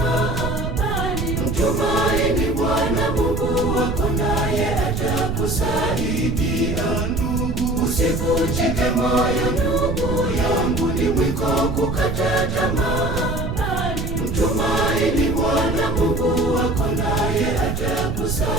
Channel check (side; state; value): right; noise; rumble, 3 dB below the sound